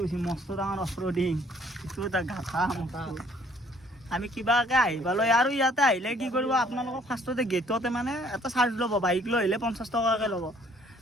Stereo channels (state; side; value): normal; both; correlation 0.61